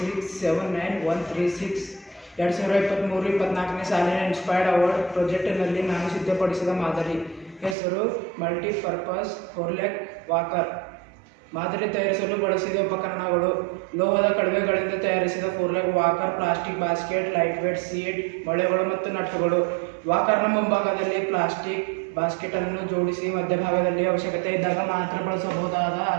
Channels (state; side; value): drops out; left; at 7.8 s